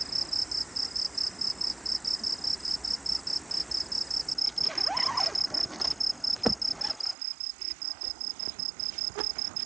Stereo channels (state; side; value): drops out; left; at 7.2 s